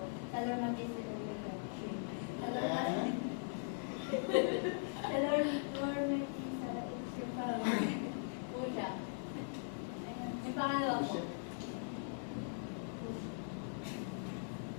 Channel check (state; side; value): silent; right; digital silence